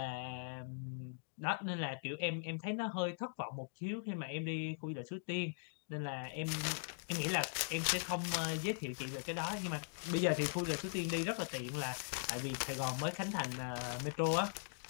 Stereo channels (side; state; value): right; silent; digital silence